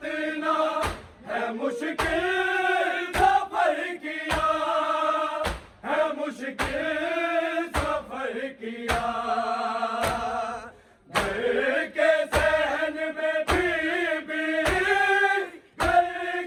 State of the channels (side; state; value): both; identical; correlation 1.00